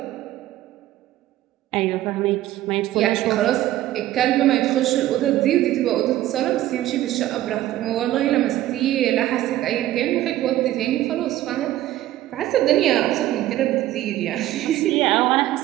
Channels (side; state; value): left; quieter; 14.4 dB